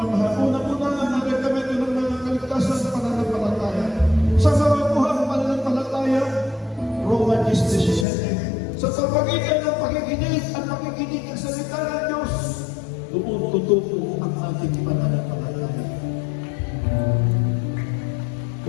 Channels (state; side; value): drops out; right; at 8.1 s